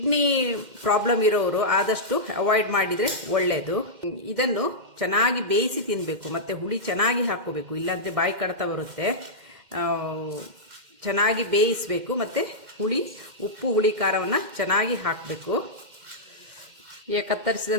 ಪ್ರಾಬ್ಲಮ್ ಇರೋರು ಆದಷ್ಟು ಅವಾಯ್ಡ್ ಮಾಡಿದರೆ ಒಳ್ಳೆಯದು. ಇದನ್ನು ಚೆನ್ನಾಗಿ ಬೇಯಿಸಿ ತಿನ್ನಬೇಕು, ಮತ್ತು ಹುಳಿ ಚೆನ್ನಾಗಿ ಹಾಕ್ಕೋಬೇಕು, ಇಲ್ಲಾಂದರೆ ಬಾಯಿ ಕಡ್ತ ಬರುತ್ತೆ. ಚೆನ್ನಾಗಿ ಬೇಯಿಸಬೇಕು, ಮತ್ತು ಉಪ್ಪು ಹುಳಿ ಖಾರವನ್ನು ಚೆನ್ನಾಗಿ ಹಾಕಬೇಕು. ಈಗ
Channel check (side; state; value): left; late; 2.1 ms